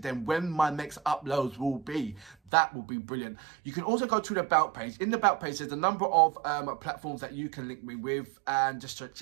when my next uploads will be. That will be brilliant. You can also go to the About page. In the About page, there's a number of platforms that you can link me with, and just to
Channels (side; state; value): left; drops out; at 2.4 s